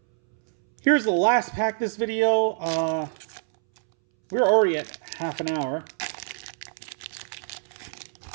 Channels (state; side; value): silent; left; 61 dB below the other